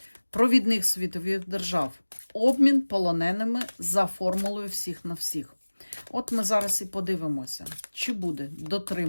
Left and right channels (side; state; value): both; inverted; correlation -1.00